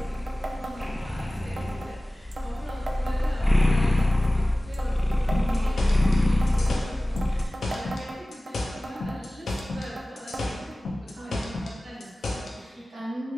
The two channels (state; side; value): normal; both; correlation 0.98